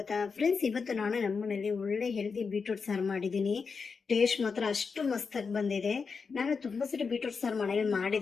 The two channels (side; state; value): right; quieter; 5.2 dB